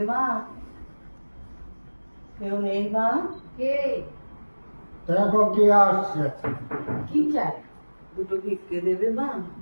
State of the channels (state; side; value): inverted; both; correlation -1.00